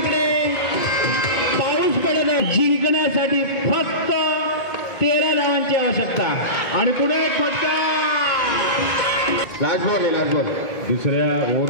पाऊस पडत आहे. जिंकण्यासाठी फक्त 13 धावांची आवश्यकता आणि पुढे फटका. Last ball. दुसऱ्या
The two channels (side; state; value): right; late; 2.2 ms